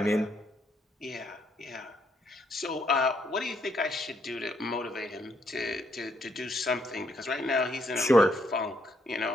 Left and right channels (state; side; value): normal; both; correlation 0.73